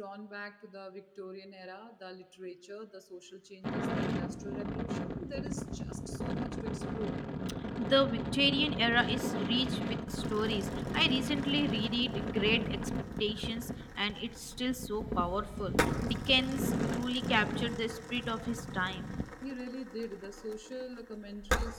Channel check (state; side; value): identical; both; correlation 1.00